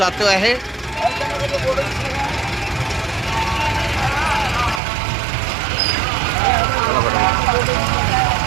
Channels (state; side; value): drops out; left; at 4.8 s